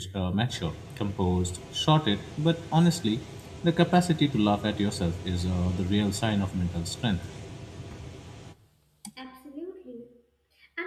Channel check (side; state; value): both; identical; correlation 1.00